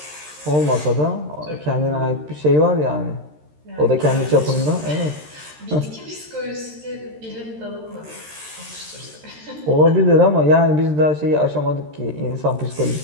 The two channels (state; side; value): late; left; 13 ms